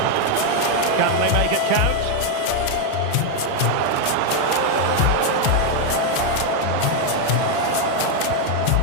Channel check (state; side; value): different; both; correlation 0.01